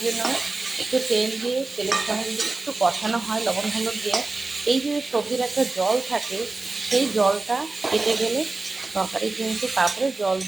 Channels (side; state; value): left; quieter; 3.4 dB